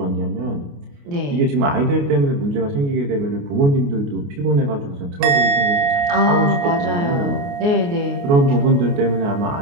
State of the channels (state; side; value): late; left; 29 ms